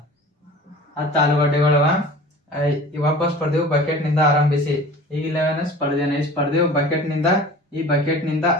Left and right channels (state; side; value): normal; both; correlation 0.41